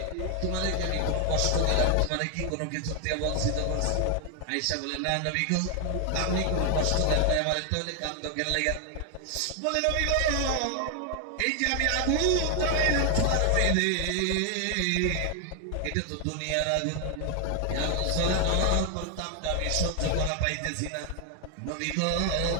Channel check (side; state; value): both; different; correlation 0.00